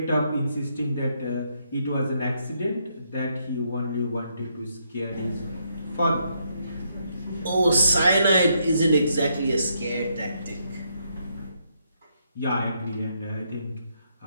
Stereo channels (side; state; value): both; inverted; correlation -0.76